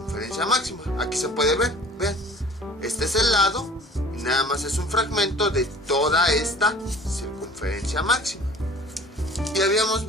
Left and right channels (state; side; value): normal; both; correlation 0.47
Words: máxima. Aquí se puede ver, vean, este es el lado y nada más es un fragmento de toda esta circunferencia máxima. Y habíamos